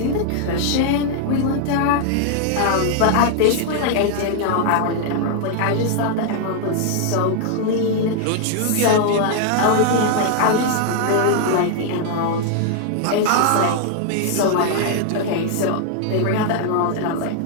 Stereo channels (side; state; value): both; different; correlation 0.00